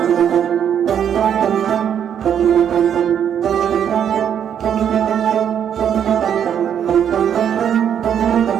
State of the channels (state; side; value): quieter; left; 8.9 dB